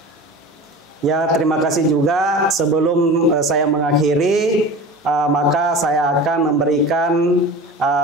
Ya, terima kasih juga. Sebelum saya mengakhiri, maka saya akan memberikan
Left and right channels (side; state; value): both; normal; correlation 0.34